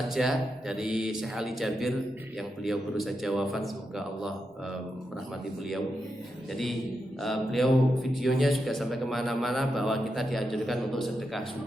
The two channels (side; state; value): both; normal; correlation 0.86